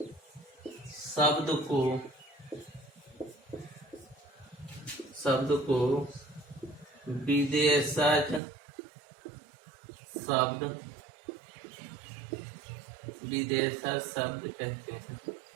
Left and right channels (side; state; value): left; drops out; at 8.4 s